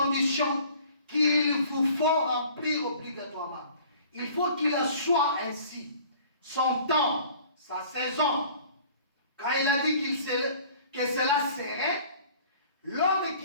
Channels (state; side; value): inverted; both; correlation -0.50